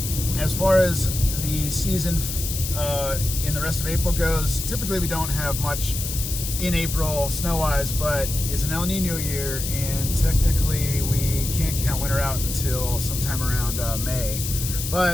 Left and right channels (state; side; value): noise; left; hiss, 5 dB below the sound